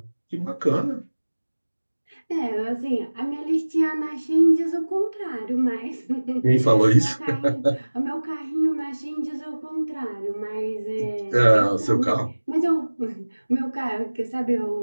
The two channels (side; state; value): both; inverted; correlation -1.00